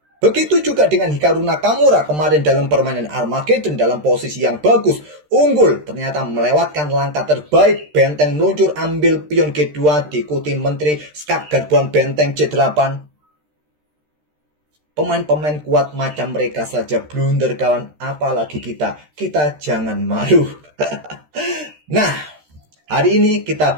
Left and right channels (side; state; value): left; late; 13 ms